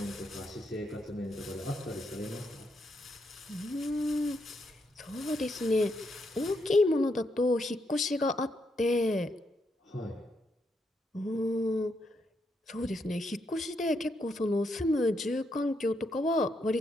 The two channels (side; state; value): both; normal; correlation 0.79